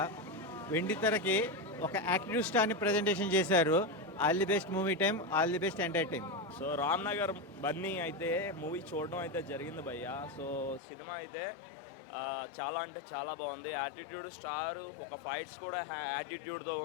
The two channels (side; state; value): right; drops out; at 10.8 s